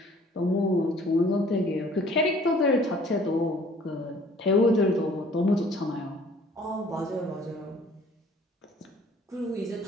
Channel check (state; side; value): normal; both; correlation 0.54